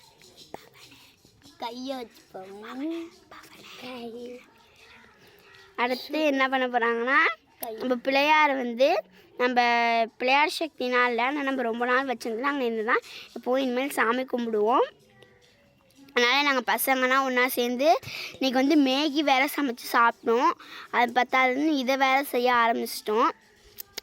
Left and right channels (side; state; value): both; identical; correlation 1.00